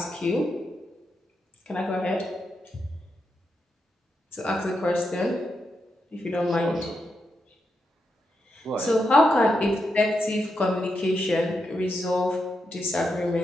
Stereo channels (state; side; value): normal; both; correlation 0.84